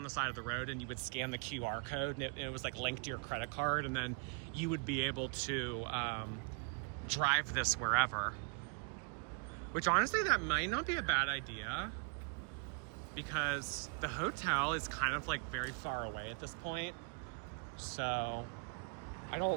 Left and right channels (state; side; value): quieter; left; 36.3 dB